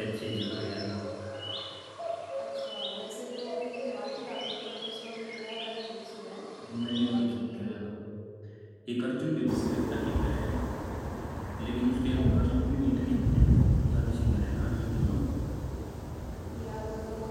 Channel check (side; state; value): both; identical; correlation 1.00